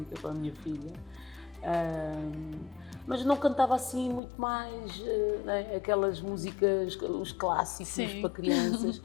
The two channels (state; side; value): drops out; right; at 4.2 s